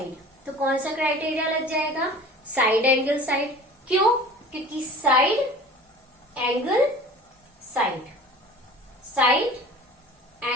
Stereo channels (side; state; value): both; normal; correlation 0.42